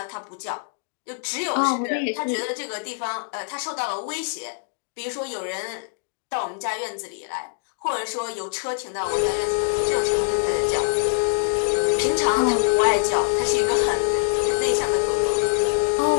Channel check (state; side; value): silent; right; digital silence